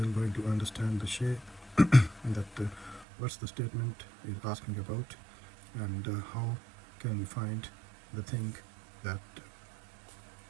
going to understand the shape that what's the statement is asking about, and how can we find the thing that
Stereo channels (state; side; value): drops out; left; at 3.1 s